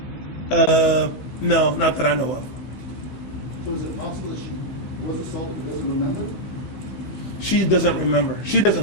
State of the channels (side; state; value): right; late; 16 ms